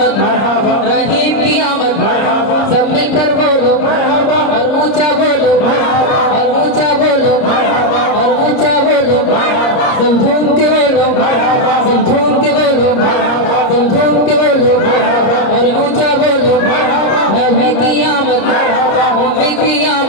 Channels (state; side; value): late; right; 30 ms